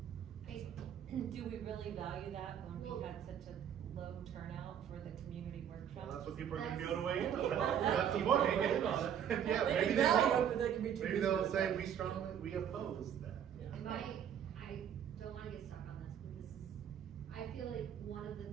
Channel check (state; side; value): quieter; left; 9.0 dB